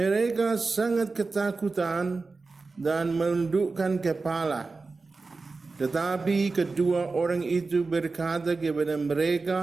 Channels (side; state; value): left; quieter; 4.0 dB